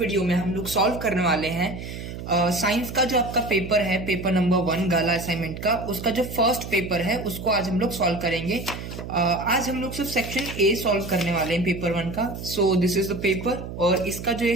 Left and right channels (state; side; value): noise; right; hum, 9 dB below the sound